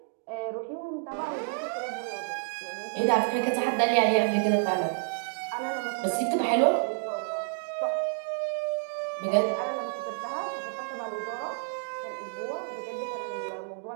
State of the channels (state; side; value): silent; left; digital silence